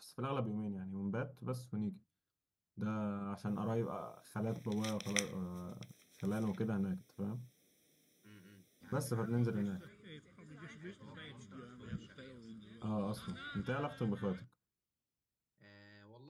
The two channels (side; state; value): both; identical; correlation 1.00